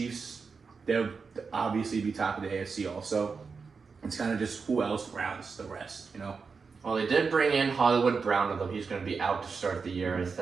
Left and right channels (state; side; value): quieter; left; 5.1 dB